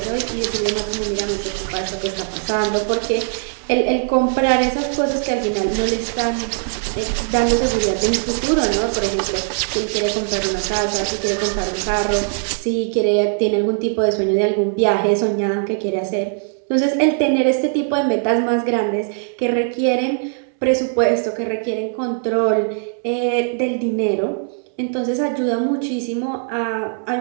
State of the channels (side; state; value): left; silent; digital silence